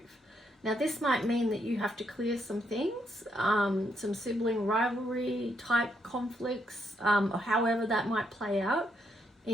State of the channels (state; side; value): normal; both; correlation 0.76